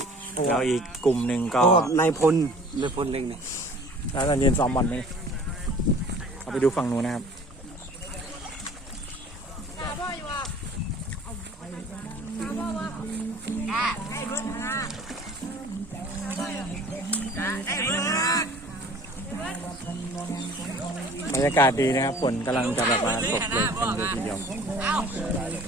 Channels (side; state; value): both; normal; correlation 0.48